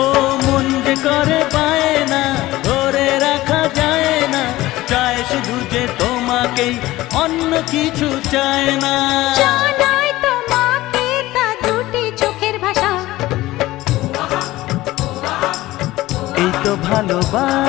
মন যে করে পায় না, ধরে রাখা যায় না, চায় শুধু যে তোমাকেই, অন্য কিছু চায় না। জানাই তোমাকে তা দুটি চোখের ভাষা, এই তো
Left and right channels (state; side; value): quieter; right; 17.4 dB